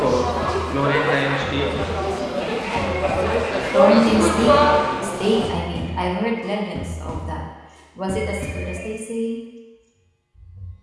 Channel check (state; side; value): identical; both; correlation 1.00